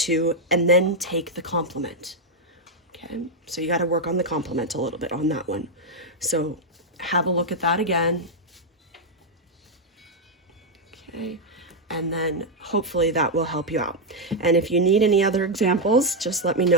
and then take the complement. Okay, so you got to work on the complement a little bit on that one. So have a look at that again. Okay, and then hopefully that will help you out. And if you need any other examples, just let me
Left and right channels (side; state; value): both; normal; correlation -0.01